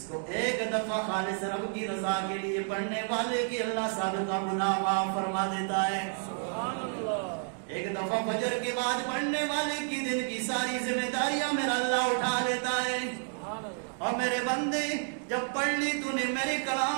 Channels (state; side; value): silent; left; 57 dB below the other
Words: کو ایک دفعہ خالص رب کی رضا کے لیے پڑھنے والے کی اللہ سابقہ گناہ معاف فرما دیتا ہے. سبحان اللہ. ایک دفعہ فجر کے بعد پڑھنے والے کی دن کی ساری ذمہ داریاں میرا اللہ اٹھا لیتا ہے. اور میرے بندے جب پڑھ لی تو نے میرے کلام